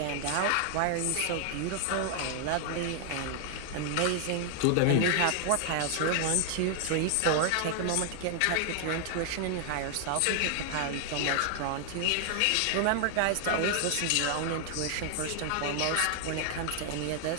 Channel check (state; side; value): different; both; correlation 0.00